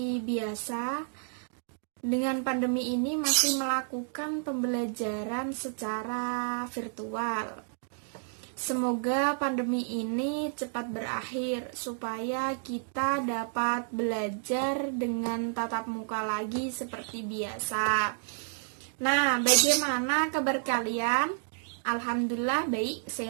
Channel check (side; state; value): left; silent; 57 dB below the other